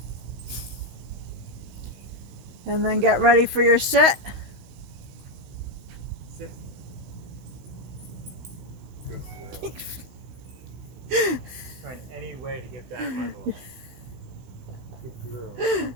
And then get ready for your sit. Sit. Good girl. Trying any way to get that muzzle. Good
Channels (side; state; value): left; late; 16 ms